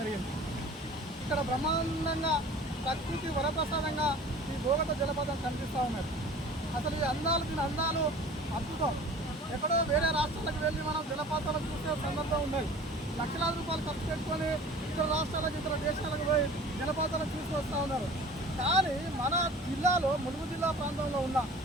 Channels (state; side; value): normal; both; correlation 0.44